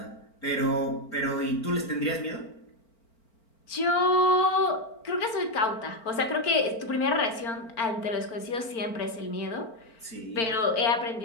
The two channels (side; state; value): right; late; 4.4 ms